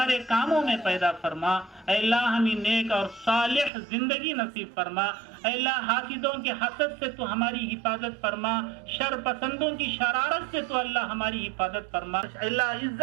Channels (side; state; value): left; drops out; at 3.7 s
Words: کاموں میں پیدا فرما. اے اللہ ہمیں نیک اور صالح زندگی نصیب فرما. اے اللہ حاسدوں کے حسد سے تو ہماری حفاظت فرما. شر پسندوں کی شرارت سے تو اللہ ہماری حفاظت فرما. اے اللہ